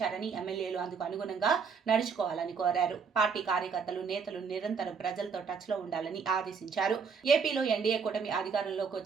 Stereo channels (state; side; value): quieter; left; 5.8 dB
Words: ఎమ్మెల్యేలు అందుకు అనుగుణంగా నడుచుకోవాలని కోరారు. పార్టీ కార్యకర్తలు, నేతలు నిరంతరం ప్రజలతో టచ్ లో ఉండాలని ఆదేశించారు. ఏపీలో ఎన్డీఏ కూటమి అధికారంలోకి